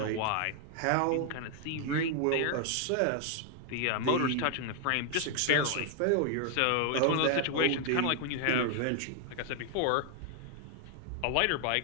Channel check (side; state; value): both; different; correlation 0.00